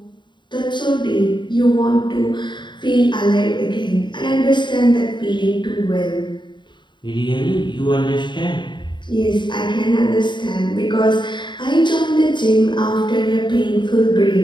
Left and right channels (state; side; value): late; right; 0.22 ms